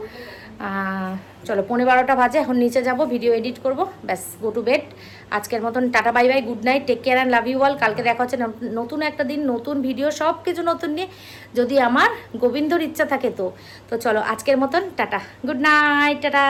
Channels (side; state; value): both; identical; correlation 1.00